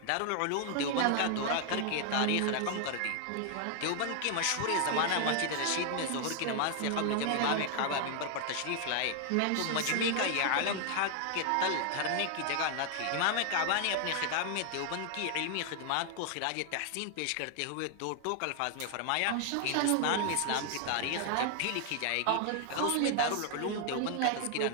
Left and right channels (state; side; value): different; both; correlation 0.00